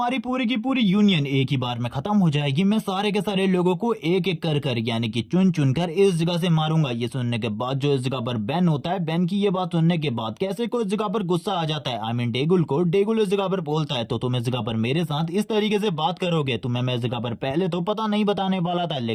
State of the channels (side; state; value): both; identical; correlation 1.00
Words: पूरी की पूरी यूनियन एक ही बार में खत्म हो जाएगी। मैं सारे के सारे लोगों को एक एक कर यानी कि चुन चुन कर इस जगह से मारूंगा। ये सुनने के बाद जो इस जगह पर बेन होता है, बेन की ये बात सुनने के बाद कैसे को इस जगह पर गुस्सा आ जाता है। आई मीन डेगुल इस जगह पर बोलता है तो तुम इस जगह पर मेरे साथ इस तरीके से बात करोगे। तुम्हें मैं इस जगह पर पहले तो पता नहीं बताने वाला था,